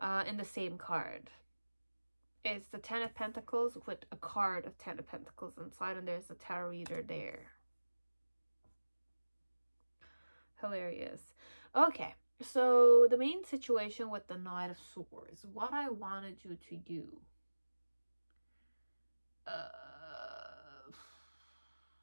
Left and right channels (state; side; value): inverted; both; correlation -1.00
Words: In the same card. It's the 10 of Pentacles with a card of 10 of Pentacles inside. And there's a tarot reader there. Hilarious. Okay. So the main situation with the Knight of Swords. What I want to do to you.